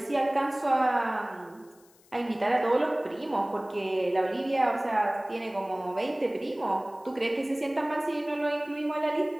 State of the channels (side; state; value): left; noise; hiss, 29 dB below the sound